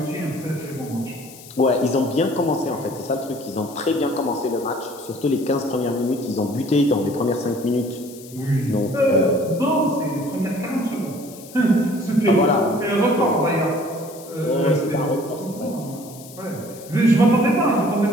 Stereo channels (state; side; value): noise; left; hiss, 19 dB below the sound